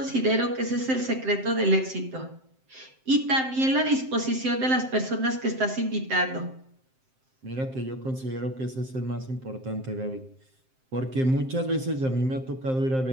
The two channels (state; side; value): late; left; 7.6 ms